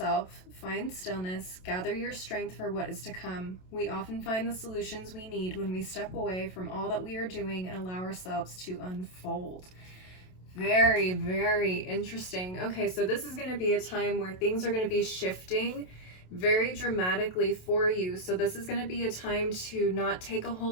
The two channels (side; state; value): right; late; 27 ms